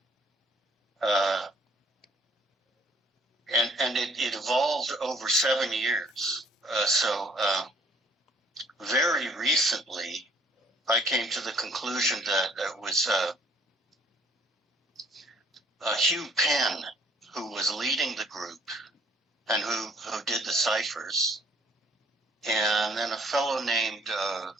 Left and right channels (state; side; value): normal; both; correlation 0.60